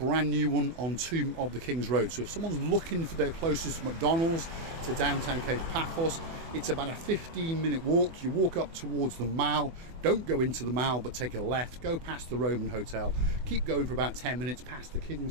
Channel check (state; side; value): late; left; 24 ms